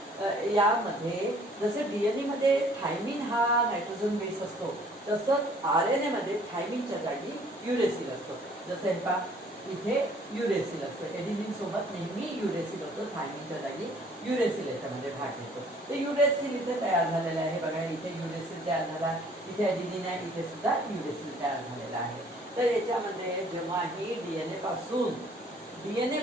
यामध्ये जसं डीएनए मध्ये थायमिन हा नायट्रोजन बेस असतो, तसंच आरएनए मध्ये थायमिनच्या जागी युरेसिल असतो. जसं हे पहा, इथे युरेसिल असतो, एडिनिन सोबत नेहमी युरेसिल होतो, थायमिनच्या जागी युरेसिल याच्यामध्ये भाग घेतो. ते युरेसिल इथे तयार झालेलं आहे. बघा, इथे युरेसिल तयार झाला, इथे एडिनिन आहे, इथे सुद्धा युरेसिल तयार झालेला आहे. तर याच्यामध्ये जेव्हाही डीएनए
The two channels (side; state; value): both; normal; correlation 0.57